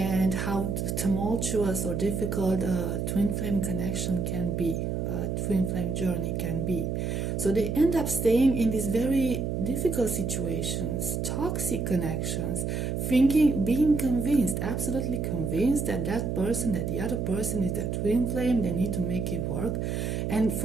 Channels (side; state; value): right; noise; hum, 1 dB below the sound